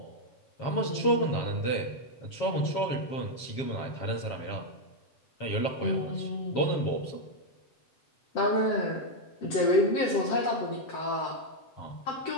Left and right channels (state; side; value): late; right; 7.3 ms